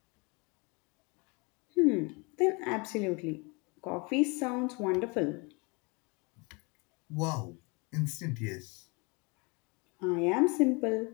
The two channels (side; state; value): right; quieter; 29.5 dB